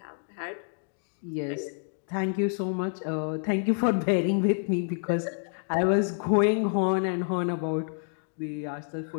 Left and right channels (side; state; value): right; silent; digital silence